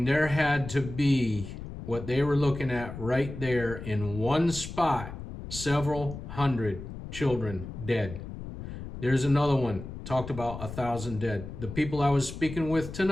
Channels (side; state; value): left; noise; rumble, 10 dB below the sound